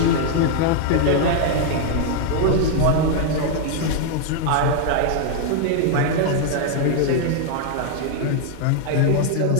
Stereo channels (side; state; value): both; different; correlation 0.00